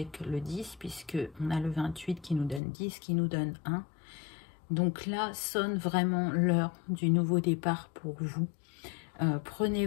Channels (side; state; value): right; drops out; at 2.6 s